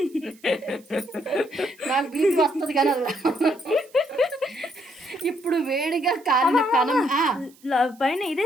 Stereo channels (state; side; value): noise; right; hiss, 28 dB below the sound